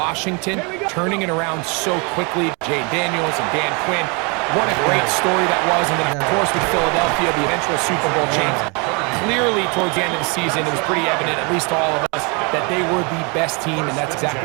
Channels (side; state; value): left; quieter; 32.1 dB